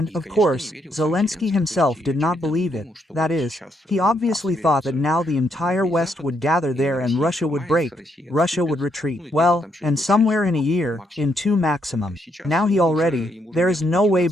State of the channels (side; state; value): both; normal; correlation 0.76